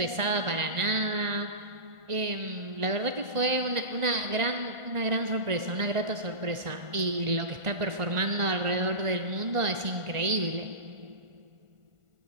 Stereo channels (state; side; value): late; left; 1.5 ms